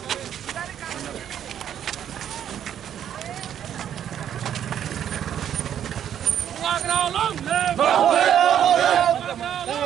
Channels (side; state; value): left; quieter; 9.8 dB